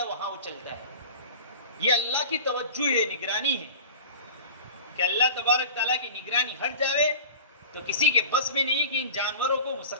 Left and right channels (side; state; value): both; inverted; correlation -0.37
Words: وہاں وہ چلتا ہے۔ یہ اللہ کی توجہ ہے، نگرانی ہے، کہ اللہ تبارک تعالیٰ کی نگرانی ہٹ جاوے تو کسی کے بس میں نہیں کہ ان جانوروں کو